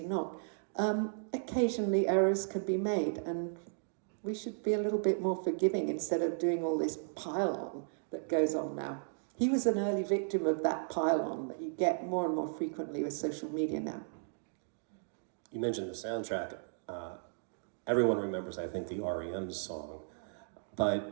not, occasionally errors can be made, and we should be a little bit more forgiving instead of doing all this pile-on that goes on now. He was an early victim of that pile-on that you get more and more frequently with social media now. You mentioned the soundtrack. Everyone remembers, I think, the REM song.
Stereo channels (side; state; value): left; silent; digital silence